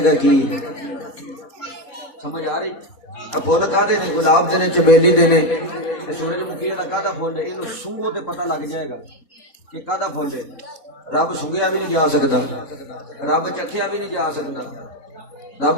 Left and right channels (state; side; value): late; right; 4.1 ms